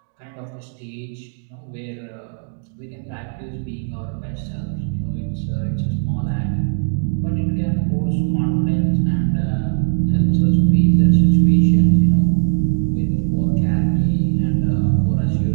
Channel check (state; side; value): silent; left; digital silence